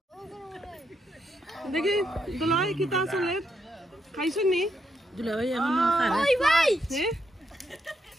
দেখি দুলাই কিতা চলে খাইছো নি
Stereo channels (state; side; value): normal; both; correlation 0.80